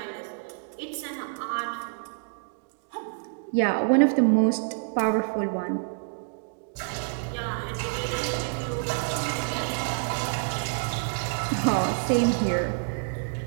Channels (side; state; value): left; silent; digital silence